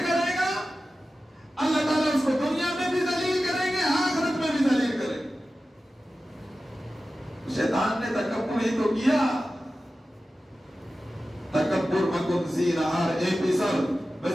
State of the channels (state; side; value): normal; both; correlation 0.94